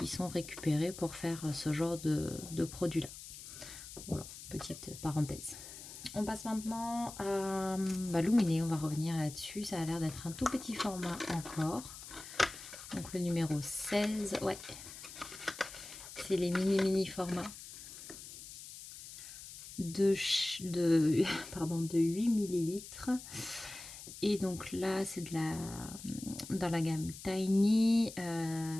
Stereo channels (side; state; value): left; noise; hiss, 13 dB below the sound